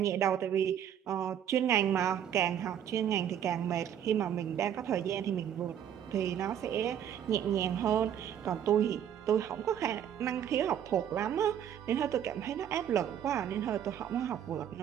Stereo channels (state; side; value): quieter; left; 9.6 dB